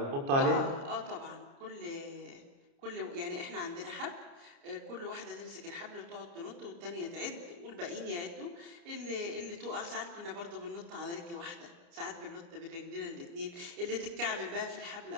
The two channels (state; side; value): late; left; 29 ms